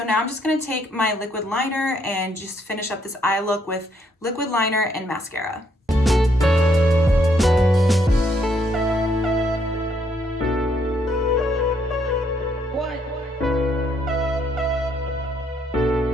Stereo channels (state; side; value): normal; both; correlation 0.71